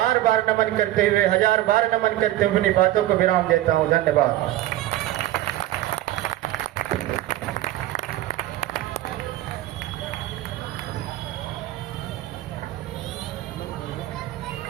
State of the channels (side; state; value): left; quieter; 14.7 dB